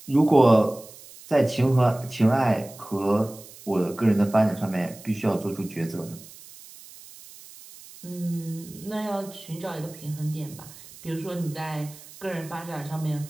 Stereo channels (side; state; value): right; noise; hiss, 19 dB below the sound